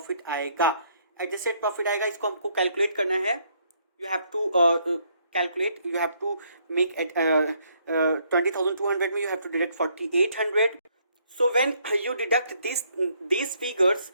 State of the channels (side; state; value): both; inverted; correlation -0.69